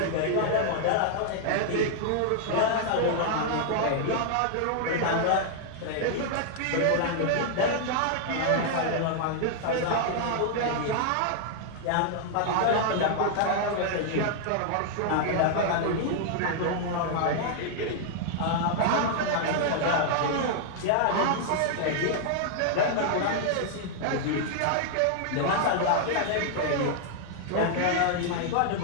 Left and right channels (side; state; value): both; different; correlation -0.01